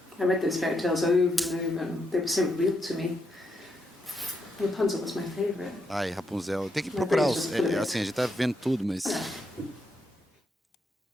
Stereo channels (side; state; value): both; normal; correlation 0.80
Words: I read those fairy tales over and over, and they were so real to me. Rapunzel was my favourite. Ai, Rapunzel. Tem que procurar os... assim, a gente tá vendo tudo, mas...